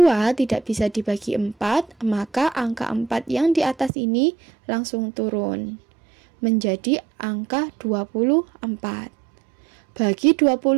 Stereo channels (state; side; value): drops out; left; at 3.9 s